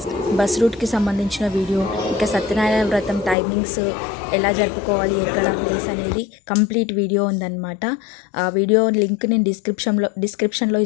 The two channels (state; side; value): drops out; right; at 3.4 s